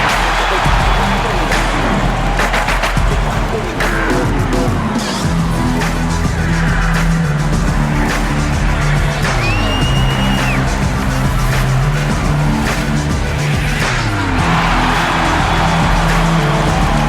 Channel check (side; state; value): both; identical; correlation 1.00